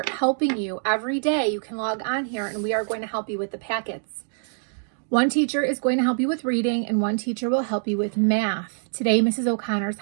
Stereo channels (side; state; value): left; silent; digital silence